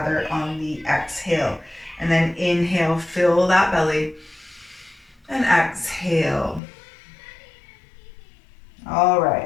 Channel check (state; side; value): drops out; right; at 6.6 s